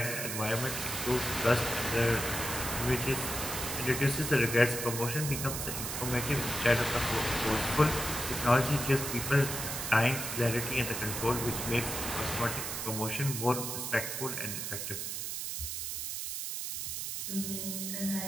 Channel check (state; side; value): noise; right; hiss, 4 dB below the sound